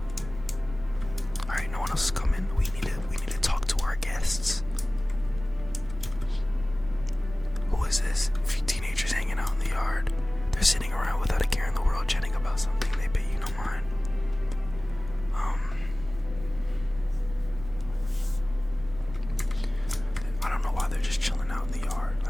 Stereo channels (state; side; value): noise; right; rumble, 13 dB below the sound